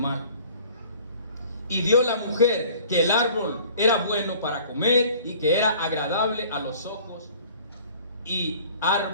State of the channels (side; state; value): both; inverted; correlation -0.50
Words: Y vio la mujer que el árbol era bueno para comer y que era agradable a los ojos y